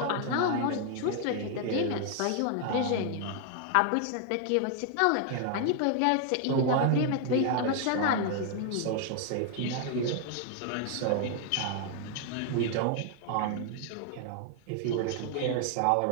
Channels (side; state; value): both; different; correlation 0.00